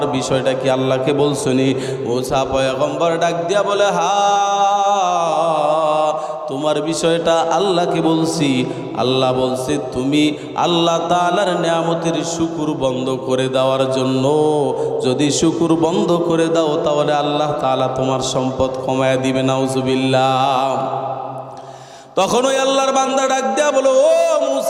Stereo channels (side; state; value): both; identical; correlation 1.00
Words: বিষয়টা কি আল্লাহকে বলছনি? মূসা পয়গম্বর ডাক দিয়া বলে, হ্যাঁ তোমার বিষয়টা আল্লাহকে বলছি। আল্লাহ বলছে তুমি আল্লাহ তাআলার নিয়ামতের শুকর বন্ধ করে দেওয়ার জন্য, যদি শুকর বন্ধ করে দাও তাহলে আল্লাহ তাআলা তোমার সম্পদ কমায় দিবে। নাউজুবিল্লাহ। তখন ওই আল্লাহর বান্দা ডাক দিয়া বলো, ও